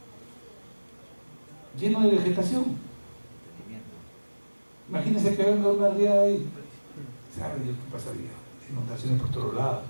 lleno de vegetación. Imagínense que venga una riada ahí. ¿Sabe Dios qué pasaría? Inundaciones por todos lados.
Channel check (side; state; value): both; inverted; correlation -1.00